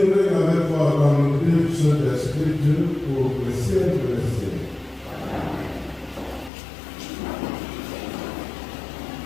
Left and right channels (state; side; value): drops out; right; at 6.5 s